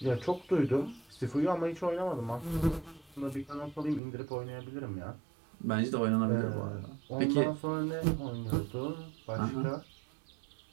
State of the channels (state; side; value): drops out; left; at 4.0 s